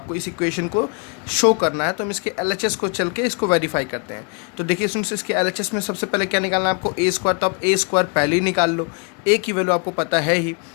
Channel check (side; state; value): right; quieter; 36.4 dB